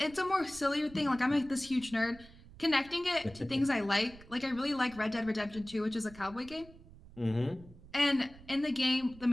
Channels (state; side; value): noise; right; rumble, 20 dB below the sound